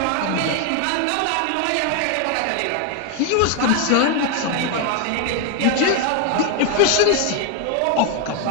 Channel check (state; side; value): different; both; correlation 0.01